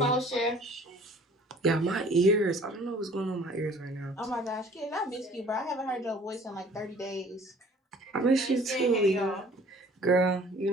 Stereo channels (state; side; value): normal; both; correlation 0.52